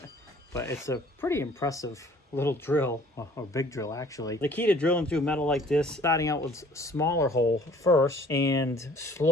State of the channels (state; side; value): normal; both; correlation 0.54